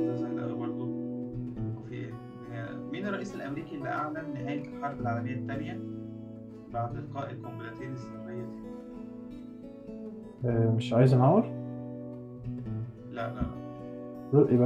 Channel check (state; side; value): identical; both; correlation 1.00